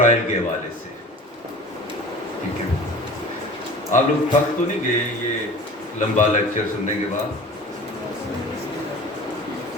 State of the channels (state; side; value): normal; both; correlation 0.40